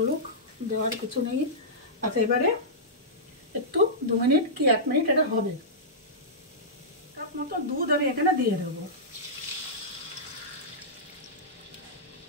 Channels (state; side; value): normal; both; correlation -0.15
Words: দেওয়ার কিছু নেই। আচ্ছা এবারে একটু 2 মিনিট কি 1 মিনিট এটা হবে। কাপ মতো দুধ আমি এখানে দিয়ে দেবো।